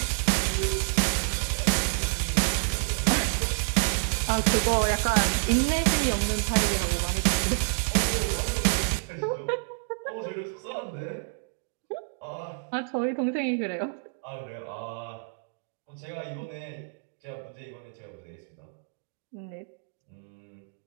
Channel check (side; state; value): left; silent; digital silence